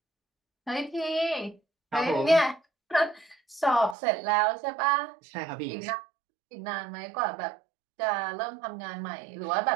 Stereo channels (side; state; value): left; drops out; at 4.0 s